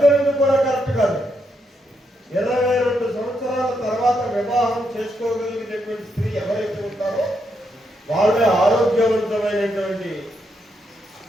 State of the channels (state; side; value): normal; both; correlation 0.80